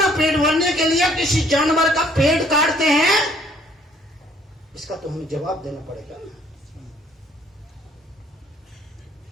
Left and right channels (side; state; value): both; normal; correlation 0.62